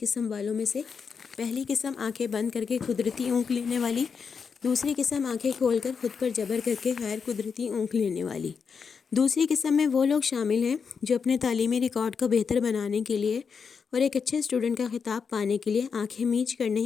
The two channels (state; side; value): quieter; right; 5.9 dB